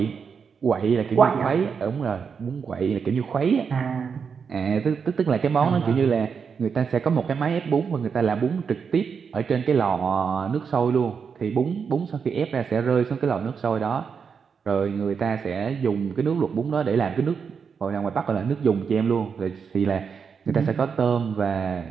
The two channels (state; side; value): quieter; left; 6.2 dB